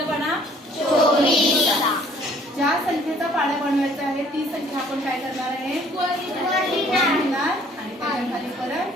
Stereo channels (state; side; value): normal; both; correlation 0.58